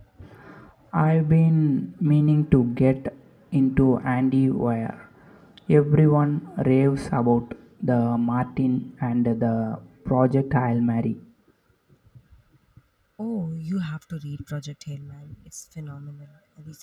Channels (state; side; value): identical; both; correlation 1.00